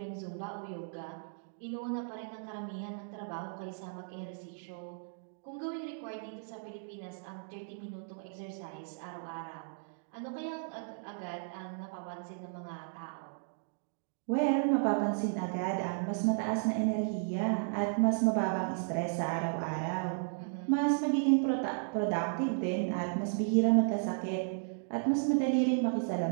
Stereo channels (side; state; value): left; silent; digital silence